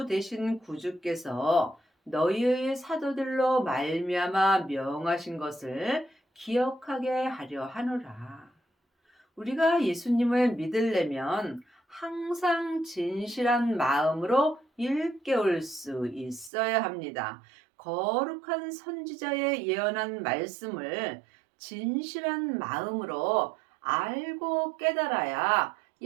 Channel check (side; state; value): left; drops out; at 16.5 s